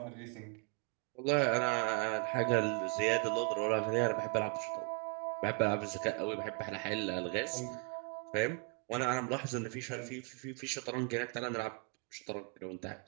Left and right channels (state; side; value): quieter; left; 33.7 dB